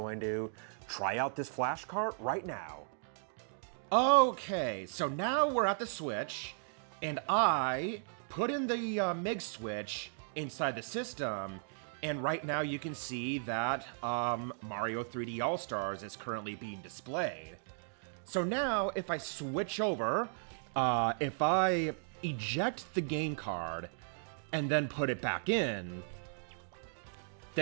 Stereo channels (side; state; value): left; silent; digital silence